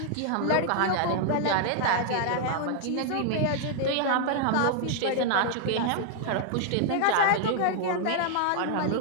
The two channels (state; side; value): different; both; correlation 0.00